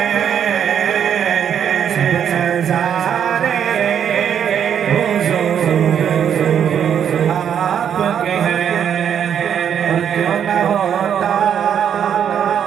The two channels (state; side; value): quieter; left; 8.6 dB